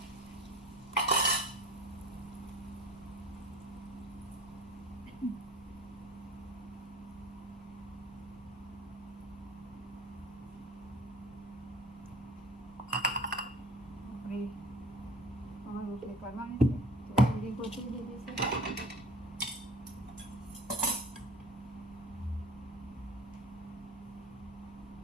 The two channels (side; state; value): both; normal; correlation 0.43